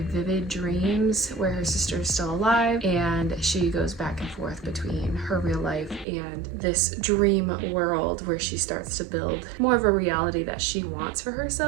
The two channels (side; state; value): left; drops out; at 6.1 s